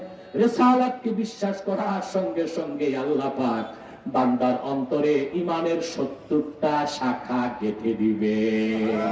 রিসালাতকে বিশ্বাস করার সঙ্গে সঙ্গে আল্লাহ পাক বান্দার অন্তরে ঈমানের 70টা শাখা গেঁথে দিবে।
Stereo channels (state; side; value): identical; both; correlation 1.00